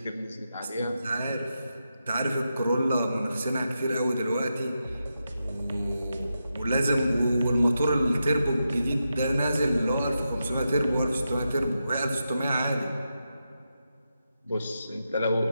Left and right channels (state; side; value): inverted; both; correlation -0.87